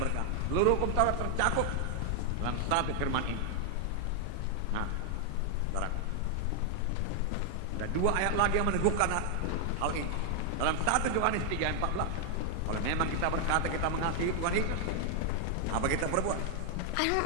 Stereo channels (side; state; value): both; different; correlation 0.00